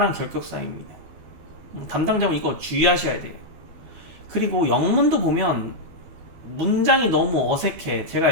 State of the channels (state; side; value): late; left; 12 ms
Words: 결격사입니다. 담당자분 이거 주의하셔야 돼요. 그리고 영문도 보면 문장이 너무 어색해. 제가